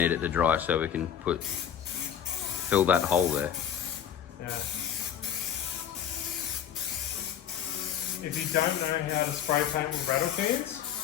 it to dry so we can fill that hole there. Yeah. If you don't know how to spray paint with rattle cans,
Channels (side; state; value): right; quieter; 9.2 dB